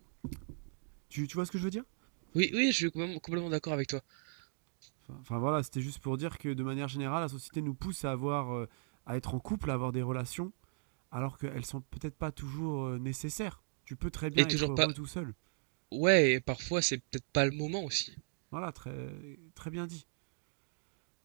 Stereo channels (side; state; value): left; silent; digital silence